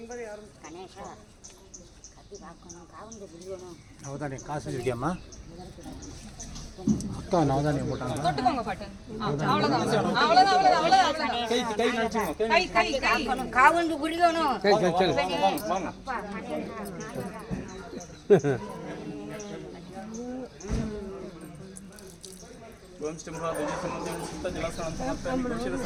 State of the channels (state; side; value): identical; both; correlation 1.00